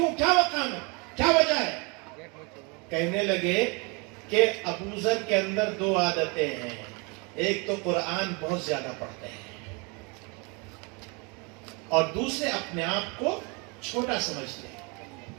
کیا مقام ہے، کیا وجہ ہے؟ کہنے لگے کہ ابو ذر کے اندر دو عادتیں ہیں. ایک تو قرآن بہت زیادہ پڑھتے ہیں، اور دوسرے اپنے آپ کو چھوٹا سمجھتے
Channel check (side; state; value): left; quieter; 30.7 dB